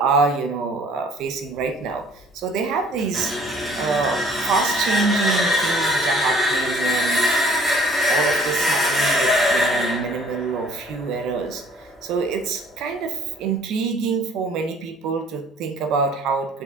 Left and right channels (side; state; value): both; normal; correlation 0.55